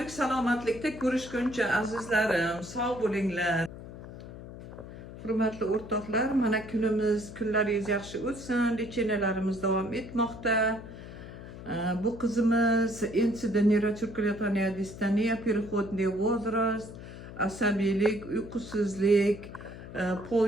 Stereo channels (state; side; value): noise; left; hum, 13 dB below the sound